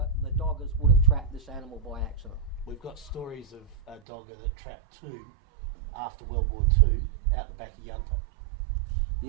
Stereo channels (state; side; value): drops out; left; at 4.0 s